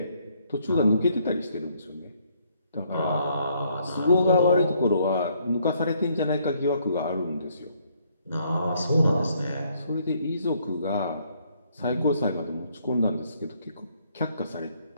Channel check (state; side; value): inverted; both; correlation -0.68